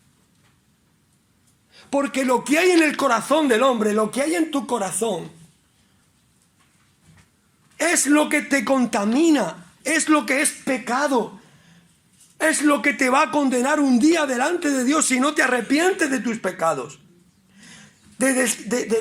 Porque lo que hay en el corazón del hombre, lo que hay en tu corazón, es lo que te contamina, es lo que es pecado, es lo que te va a condenar un día delante de Dios si no te arrepientes de tus pecados. De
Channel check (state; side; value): identical; both; correlation 1.00